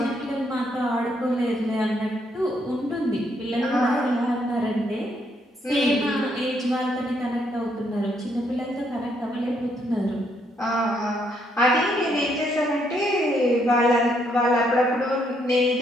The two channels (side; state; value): both; normal; correlation 0.73